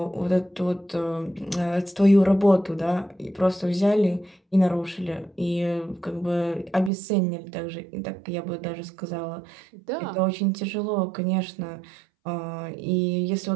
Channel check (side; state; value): left; drops out; at 6.9 s